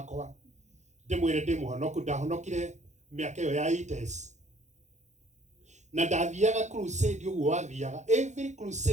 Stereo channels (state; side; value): late; left; 0.34 ms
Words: Ndimwire ndimuhonoku ndahonokire miaka yo ya 80s. Na ndathiaga crusade uguo wathiaga every